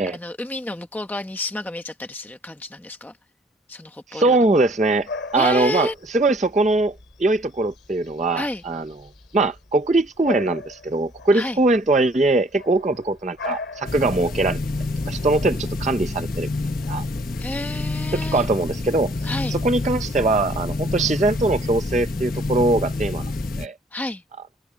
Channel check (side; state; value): both; normal; correlation 0.57